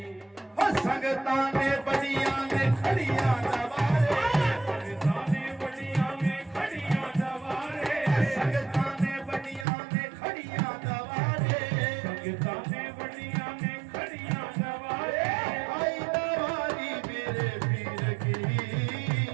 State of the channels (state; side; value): drops out; left; at 9.7 s